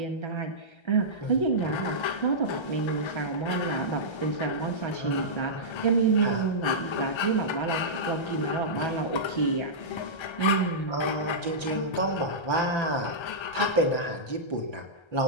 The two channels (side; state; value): right; late; 1.3 ms